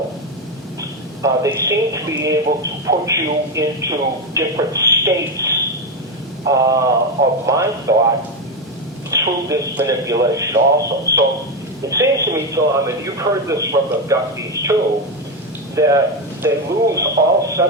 They seem to be able to put you into different states of mind thought through this manipulation also. So it seems to me, Tom, and you've heard this from abductees too, that they lose all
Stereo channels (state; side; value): normal; both; correlation 0.10